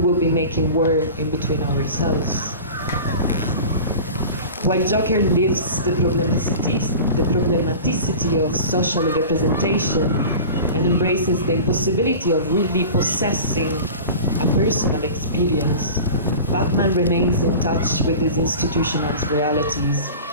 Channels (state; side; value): inverted; both; correlation -0.36